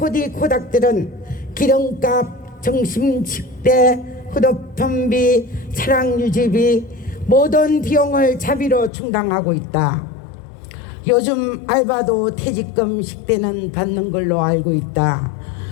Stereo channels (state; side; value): drops out; right; at 8.9 s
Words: 기름값, 점심 식대, 휴대폰비, 차량 유지비 모든 비용을 자비로 충당하고 있다. 요즘 알바도 퇴직금 식대는 받는 걸로 알고 있다.